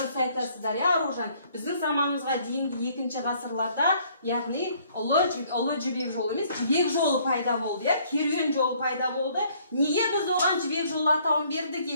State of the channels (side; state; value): both; inverted; correlation -0.62